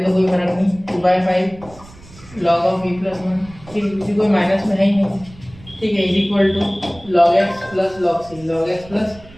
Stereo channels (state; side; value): noise; right; rumble, 21 dB below the sound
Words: दो कोई फर्क नहीं, 2/5 log of v + 1, ठीक है किसी कोई माइनस में है ही नहीं, ठीक है = log x + log c, log x +